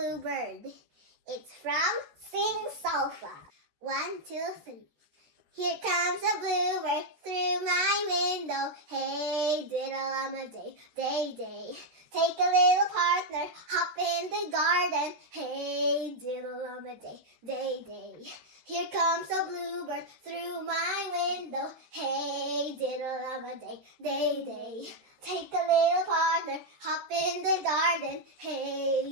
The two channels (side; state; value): left; late; 13 ms